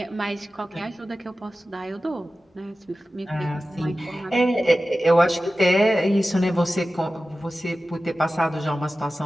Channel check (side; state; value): both; normal; correlation 0.95